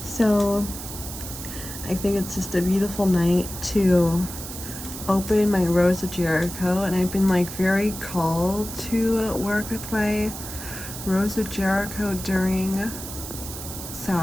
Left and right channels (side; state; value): right; noise; hiss, 10 dB below the sound